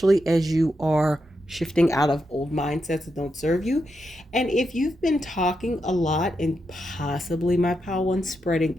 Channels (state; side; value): normal; both; correlation 0.85